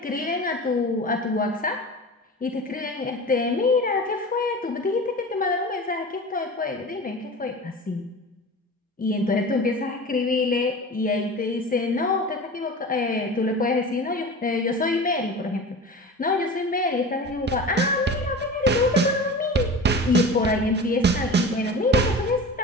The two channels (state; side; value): normal; both; correlation 0.34